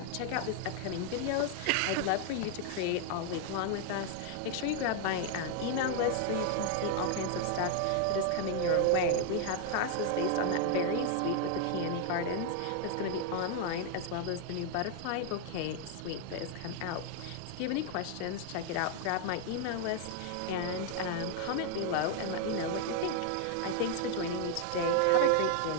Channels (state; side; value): different; both; correlation 0.00